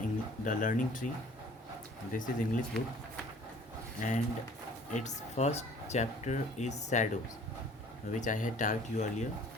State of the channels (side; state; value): both; normal; correlation 0.52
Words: Learning Tree. This is English book, and its first chapter is Shadows, which I had taught you earlier.